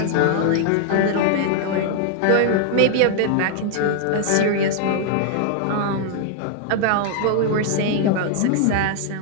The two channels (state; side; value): different; both; correlation 0.00